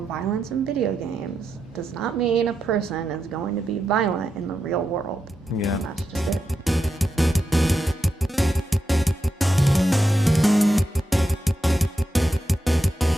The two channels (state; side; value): normal; both; correlation 0.86